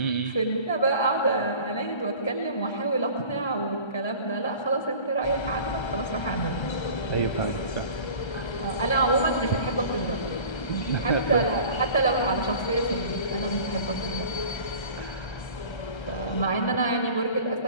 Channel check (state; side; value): late; right; 1.3 ms